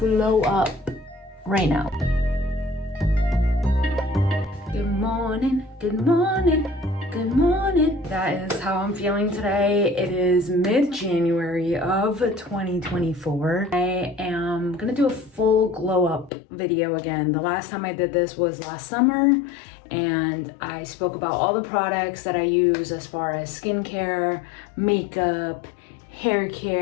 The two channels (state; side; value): drops out; right; at 16.3 s